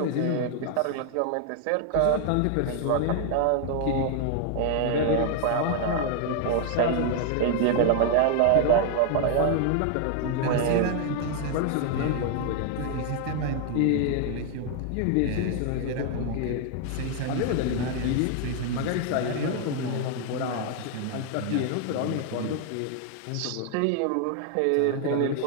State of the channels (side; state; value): both; different; correlation 0.00